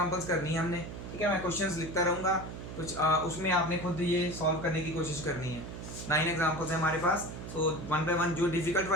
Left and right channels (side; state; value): right; noise; hum, 9 dB below the sound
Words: करनी है हमने, ठीक है। मैं क्वेश्चंस लिखता रहूँगा कुछ, उसमें आपने खुद ये सॉल्व करने की कोशिश करनी है। 9 एग्जांपल्स हैं हमारे पास, तो 1 बाय 1 जो डिफिकल्ट